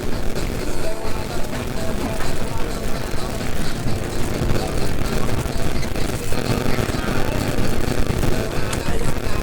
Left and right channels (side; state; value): both; identical; correlation 1.00